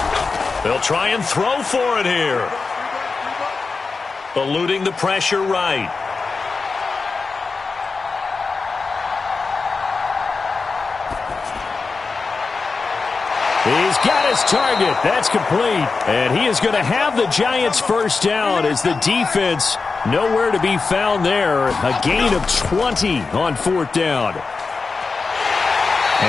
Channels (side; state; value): right; quieter; 4.4 dB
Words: They'll try and throw for it here. Eluding the pressure right. He's got his target. That's complete. And he is going to have the Giants first down as the defense nowhere to be found there. A gain of 20 on fourth down.